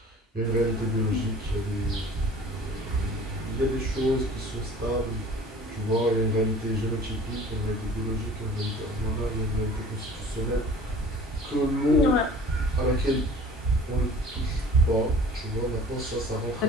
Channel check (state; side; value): normal; both; correlation 0.47